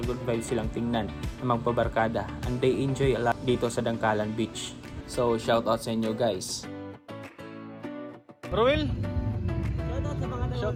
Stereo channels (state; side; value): identical; both; correlation 1.00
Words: vibes silang tingnan na magpabarkada, and they enjoy a lot dito sa Dangkalan Beach. So shoutout sa inyo guys. Ruel, Shoutout sa mga